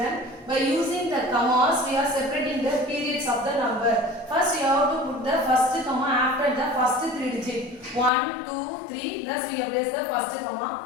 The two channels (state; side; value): drops out; right; at 8.1 s